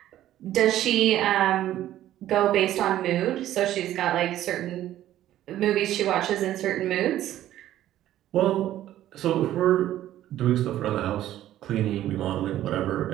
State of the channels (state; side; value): quieter; left; 13.0 dB